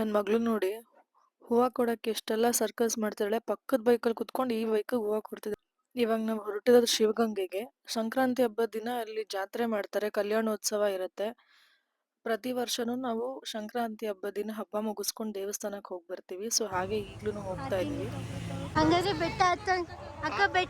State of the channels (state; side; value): identical; both; correlation 1.00